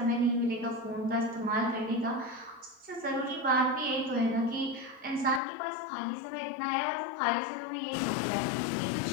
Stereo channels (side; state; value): right; drops out; at 5.4 s